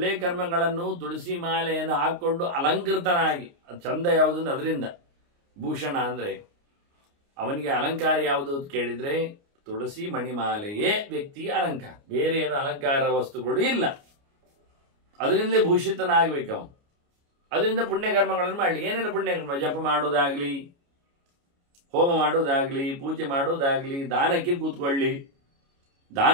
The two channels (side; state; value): left; late; 29 ms